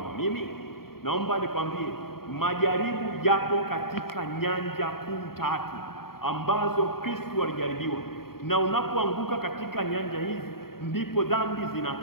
mimi? Naomba nikwambie, majaribu yapo katika nyanja kuu 3 ambazo Kristo alijaribiwa. Na unapoanguka katika nyanja hizi ndipo dhambi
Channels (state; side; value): late; right; 0.94 ms